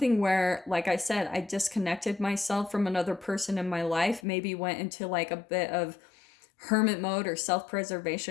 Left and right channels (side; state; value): right; drops out; at 4.2 s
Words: where, like I said, I disconnected myself from another person in my life, maybe went into like a bit of hermit mode or